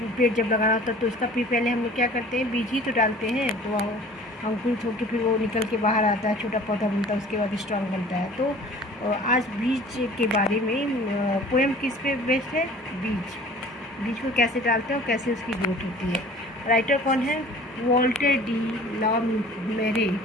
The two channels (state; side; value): normal; both; correlation 0.47